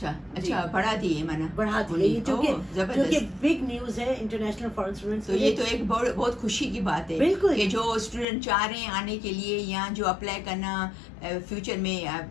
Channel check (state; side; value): drops out; right; at 8.2 s